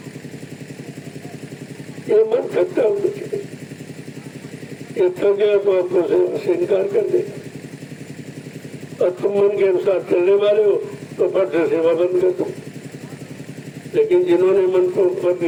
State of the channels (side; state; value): both; identical; correlation 1.00